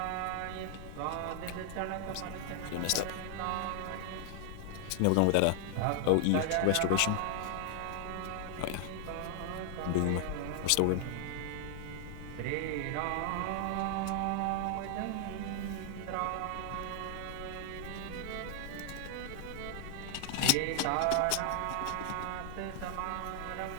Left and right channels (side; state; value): both; different; correlation 0.00